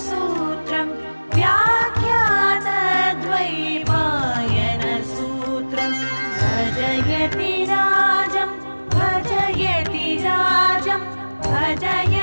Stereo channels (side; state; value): both; inverted; correlation -1.00